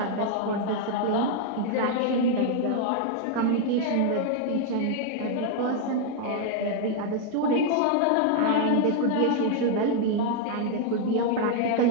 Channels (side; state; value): both; different; correlation 0.00